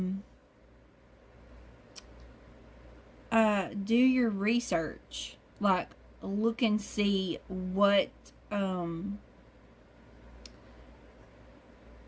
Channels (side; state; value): both; identical; correlation 1.00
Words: your research. Like, look and see what